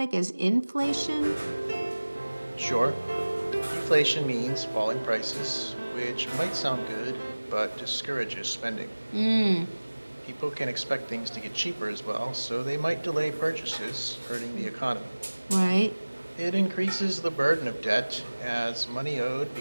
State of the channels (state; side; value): inverted; both; correlation -1.00